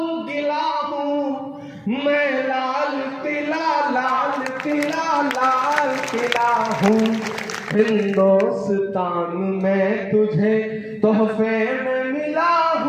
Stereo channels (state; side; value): identical; both; correlation 1.00